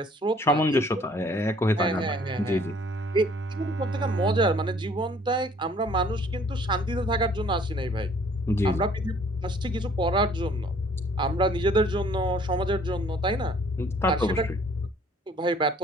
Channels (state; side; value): normal; both; correlation 0.58